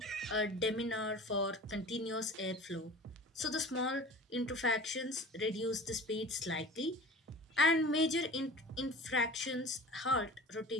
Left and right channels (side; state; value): both; normal; correlation 0.39